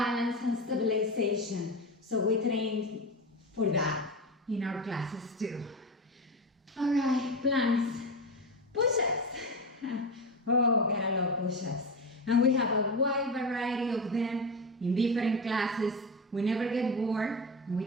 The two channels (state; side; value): normal; both; correlation 0.20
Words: and stabilization. So we train for that in our classes too. All right, planks, push-ups. Oh, gotta love push-ups. And we have a wide variety of them in different classes. We never get bored, and we